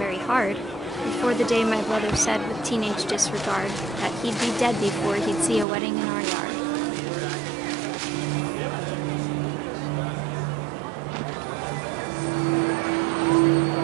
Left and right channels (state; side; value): drops out; left; at 5.7 s